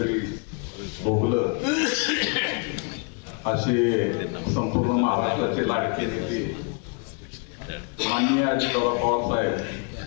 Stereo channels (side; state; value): right; quieter; 36.4 dB